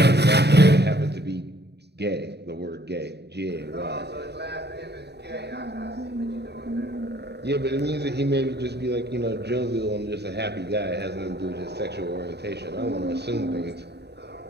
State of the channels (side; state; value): left; late; 0.49 ms